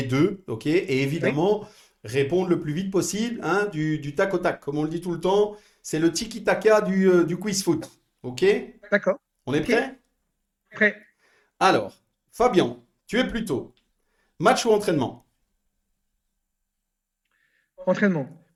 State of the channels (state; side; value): identical; both; correlation 1.00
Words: deux, ok? Et Oui, évidemment, répondre le plus vite possible, hein, du tac au tac. Comme on le dit tout le temps, c'est le tiki-taka du quiz foot, ok? d'accord. On est Ok, prêt? prêt. Alors, Fabien, tu es plutôt match ou entraînement? Entraînement.